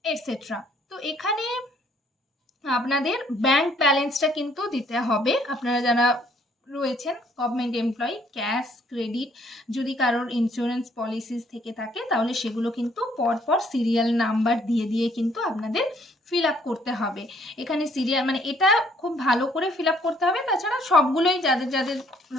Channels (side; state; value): both; normal; correlation 0.64